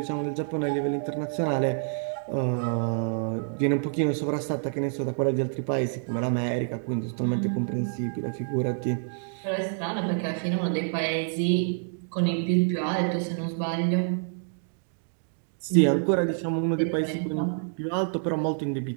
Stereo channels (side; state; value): left; silent; digital silence